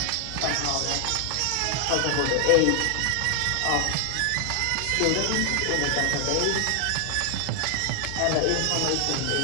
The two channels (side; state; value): both; different; correlation 0.00